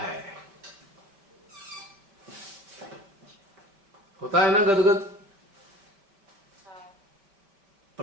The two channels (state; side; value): late; left; 5.1 ms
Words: होता है ना गदगद,